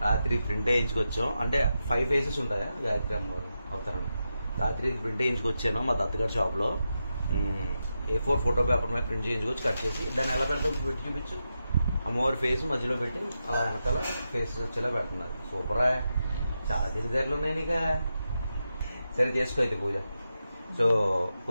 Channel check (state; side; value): inverted; both; correlation -0.88